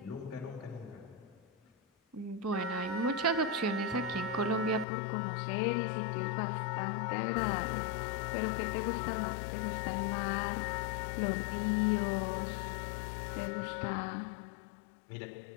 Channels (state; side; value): drops out; right; at 4.9 s